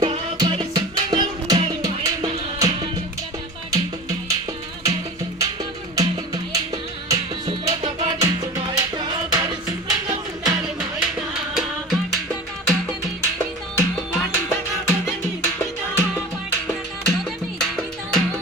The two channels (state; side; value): normal; both; correlation 0.35